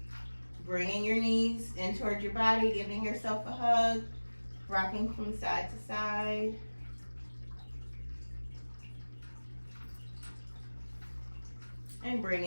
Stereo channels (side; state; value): both; inverted; correlation -1.00